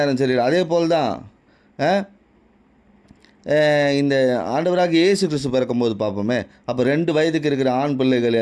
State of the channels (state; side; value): identical; both; correlation 1.00